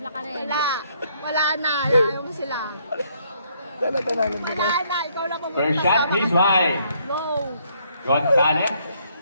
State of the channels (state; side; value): inverted; both; correlation -0.69